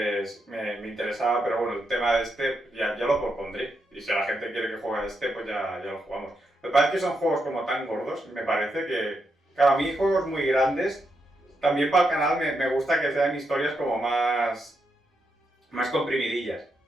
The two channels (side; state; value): both; normal; correlation 0.83